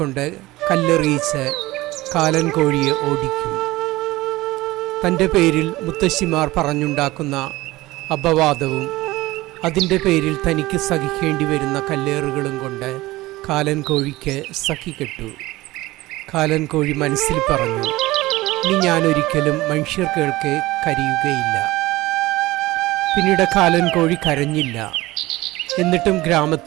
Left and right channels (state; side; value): quieter; left; 18.8 dB